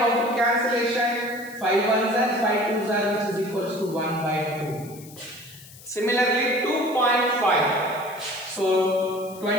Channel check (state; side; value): noise; left; hiss, 20 dB below the sound